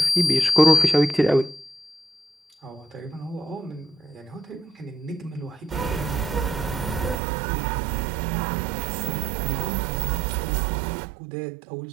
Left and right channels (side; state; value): left; drops out; at 7.2 s